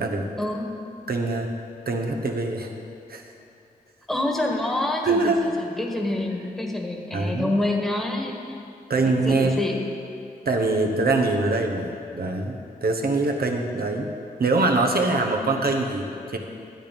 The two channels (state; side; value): normal; both; correlation 0.59